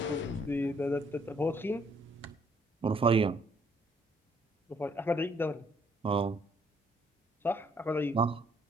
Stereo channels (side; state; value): both; normal; correlation 0.66